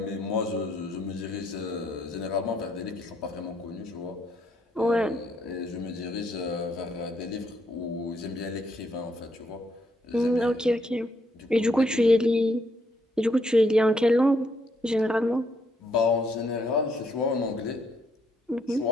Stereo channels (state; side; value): normal; both; correlation 0.73